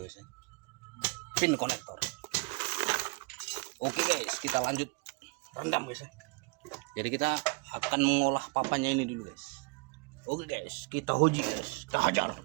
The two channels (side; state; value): left; quieter; 29.8 dB